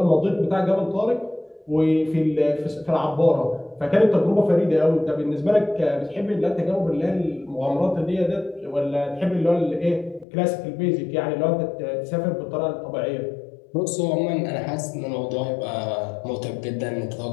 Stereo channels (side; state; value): right; drops out; at 10.2 s